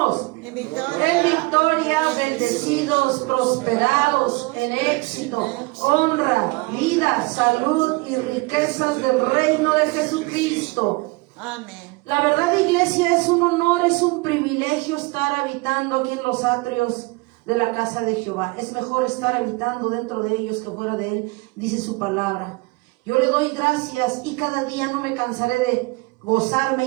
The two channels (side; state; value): left; quieter; 25.5 dB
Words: En victoria. En victoria, bendecidos, prosperados, en éxito, honra, vida, salud y riquezas del reino de Jesucristo. Amén. La verdad, iglesia, es un honor, es un privilegio estar habitando aquí en los atrios de la casa de Jehová. Es mejor estar habitando dentro de ellos que fuera de él, dice su palabra. Yo le doy gracias y cada día no me cansaré de gozarme